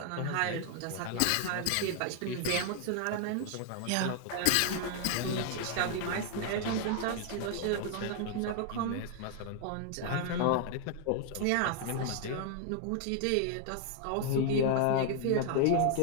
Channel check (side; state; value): both; different; correlation 0.00